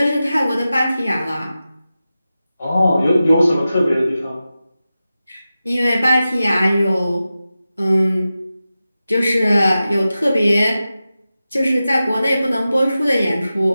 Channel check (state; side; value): inverted; both; correlation -0.93